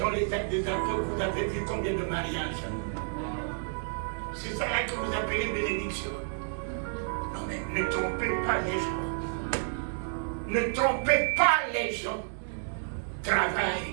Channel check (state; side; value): silent; left; 58 dB below the other